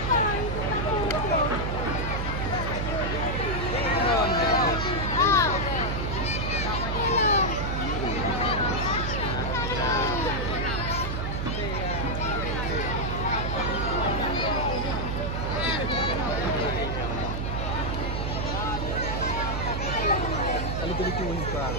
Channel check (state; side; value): noise; right; hum, 2 dB below the sound